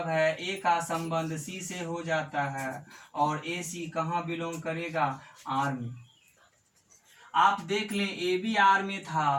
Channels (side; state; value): both; identical; correlation 1.00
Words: है a का संबंध c से हो जाता है और a c कहाँ बिलोंग करेगा, r में। आप देख लें ए बी आर में